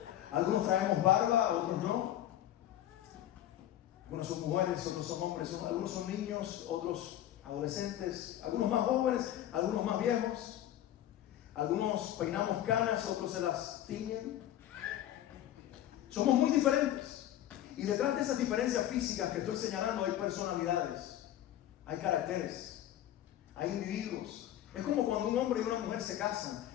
Algunos traemos barba, otros no. Algunos son mujeres, otros son hombres. Algunos son niños, otros adolescentes. Algunos más jóvenes, algunos más viejos. Algunos peinamos canas, otros se las tiñen. Somos muy diferentes. Y detrás de esas diferencias físicas que estoy señalando hay personalidades, hay caracteres, hay individuos. Es como cuando un hombre y una mujer se casan.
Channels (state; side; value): quieter; right; 12.4 dB